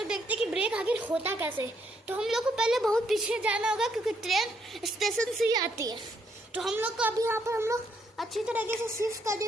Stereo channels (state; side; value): normal; both; correlation 0.73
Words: देखते हैं कि ब्रेक आखिर होता कैसे। तो हम लोग को पहले बहुत पीछे जाना होगा क्योंकि ट्रेन स्टेशन से ही आती है। तो हम लोग को अभी यहाँ पर हम लोग अच्छी तरीके से शिफ्ट कर